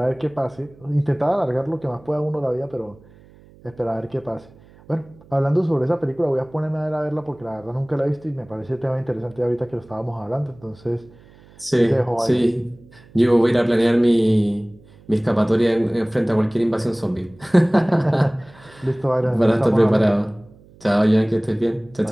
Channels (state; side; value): noise; right; hum, 26 dB below the sound